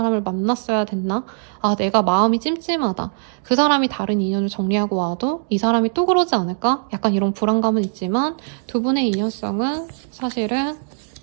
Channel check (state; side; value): silent; left; digital silence